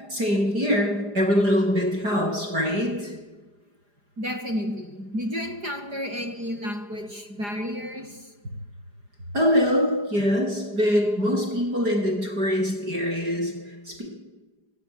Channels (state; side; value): late; left; 4.9 ms